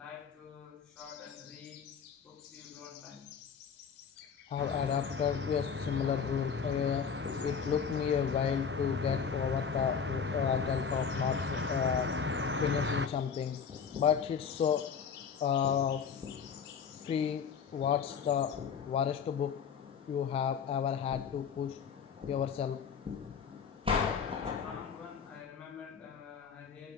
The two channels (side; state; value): right; quieter; 6.7 dB